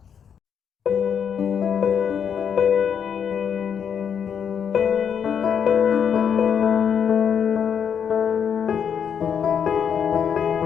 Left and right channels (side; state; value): right; quieter; 7.7 dB